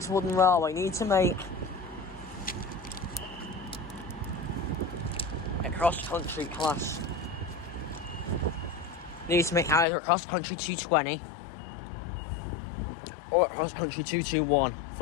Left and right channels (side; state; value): right; drops out; at 9.9 s